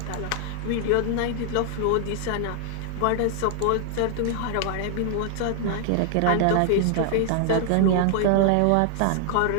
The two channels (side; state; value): both; different; correlation 0.00